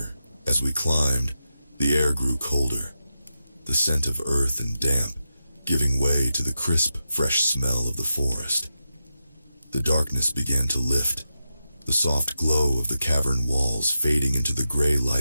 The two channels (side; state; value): both; inverted; correlation -0.89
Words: As we climbed, the air grew colder, the scent of earth and damp giving way to the crisp, fresh smell of the forest. The darkness began to lift, the soft glow of the cavern walls fading into the gray